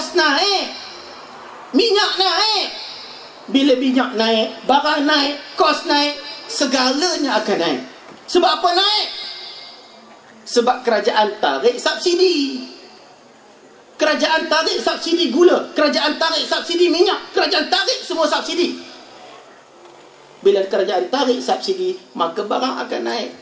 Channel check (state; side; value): identical; both; correlation 1.00